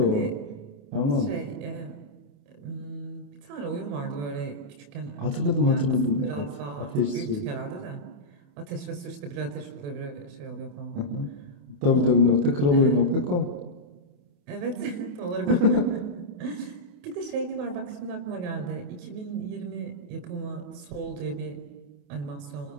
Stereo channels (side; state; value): left; late; 28 ms